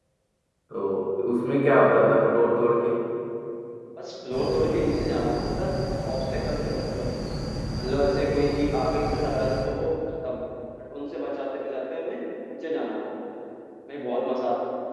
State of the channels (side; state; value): both; identical; correlation 1.00